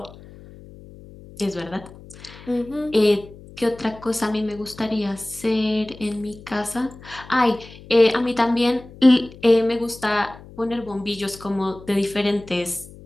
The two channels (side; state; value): left; noise; hum, 19 dB below the sound